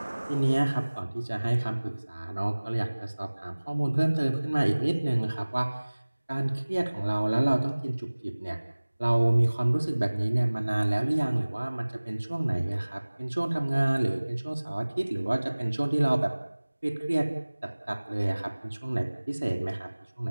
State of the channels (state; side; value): inverted; both; correlation -1.00